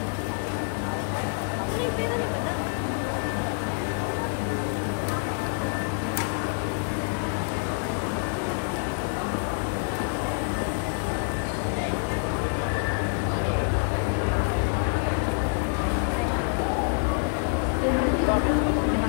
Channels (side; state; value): right; silent; 60 dB below the other